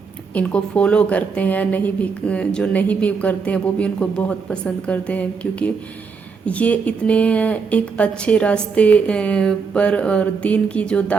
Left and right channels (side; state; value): left; quieter; 5.3 dB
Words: ان کو فالو کرتے ہیں، جو نہیں بھی کرتے ہیں وہ بھی ان کو بہت پسند کرتے ہیں، کیونکہ یہ اتنے ایک اچھے راستے پر اور دین کی جو